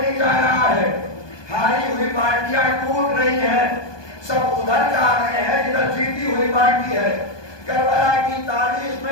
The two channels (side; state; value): right; late; 1.2 ms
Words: نہیں جا رہا ہے. ہاری ہوئی پارٹیاں ٹوٹ رہی ہیں, سب ادھر جا رہے ہیں جدھر جیتی ہوئی پارٹی ہے. کربلا کی تاریخ